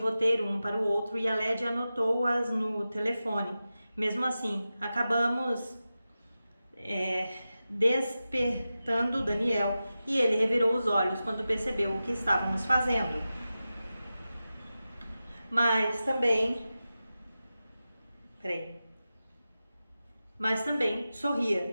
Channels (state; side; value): inverted; both; correlation -0.93